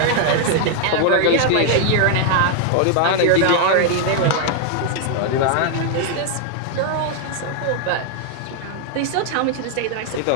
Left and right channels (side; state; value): both; different; correlation 0.00